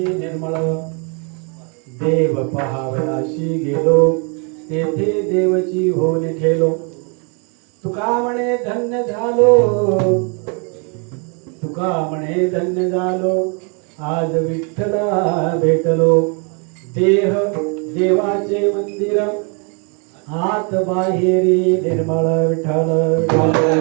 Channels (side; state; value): left; quieter; 36.3 dB